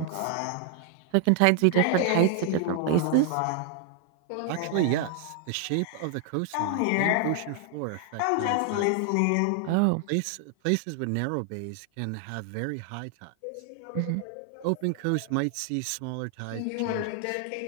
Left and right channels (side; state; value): both; different; correlation 0.00